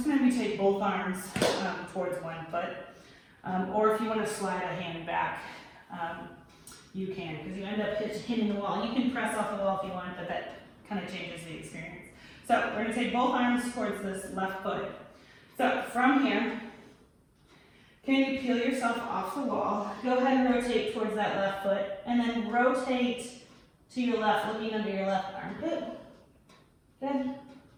going to take both arms towards one foot. Or if you want to slide a hand back, you can, because you end up hitting the wall. You can press off the wall if you want, but that kind of changes the experience. So we're going to take both arms towards this left foot. So from here, can you peel yourself off the wall? Go ahead and rotate towards that left foot, and then rotate to your left, looking under your left armpit. Good.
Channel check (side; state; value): both; identical; correlation 1.00